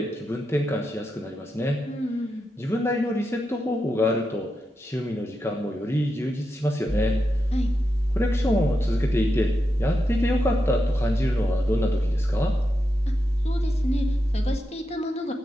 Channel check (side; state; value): both; normal; correlation 0.87